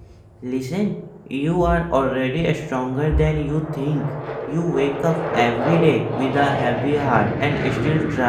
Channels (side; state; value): both; identical; correlation 1.00